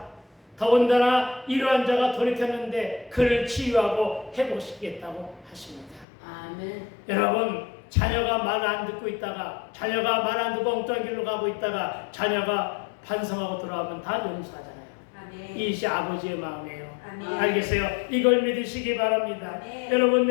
더군다나 이러한 자가 돌이켰는데 그를 치유하고 회복시키겠다고 하십니다. 아멘. 여러분, 자녀가 말 안 듣고 있다가, 자녀가 말 안 듣고 엉뚱한 길로 가고 있다가 자녀가 반성하고 돌아오면 다 용서하잖아요. 이것이 아버지의 마음이에요. 알겠어요? 이걸 믿으시기 바랍니다. 여러분,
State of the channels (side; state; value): right; drops out; at 6.1 s